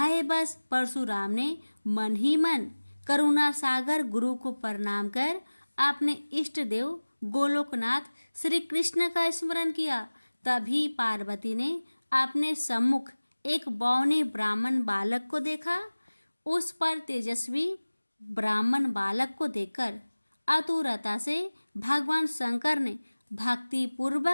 बस परशुराम ने मन ही मन करुणा सागर गुरु को प्रणाम कर अपने इष्ट देव गोलोकनाथ श्री कृष्ण का स्मरण किया। तभी पार्वती ने अपने सम्मुख एक बौने ब्राह्मण बालक को देखा। उस पर तेजस्वी ब्राह्मण बालक को देखकर आतुरता से भगवान शंकर ने भक्ति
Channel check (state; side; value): inverted; both; correlation -1.00